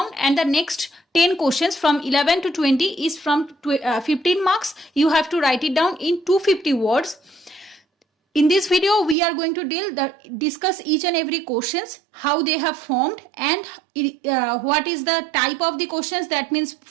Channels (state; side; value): drops out; left; at 9.2 s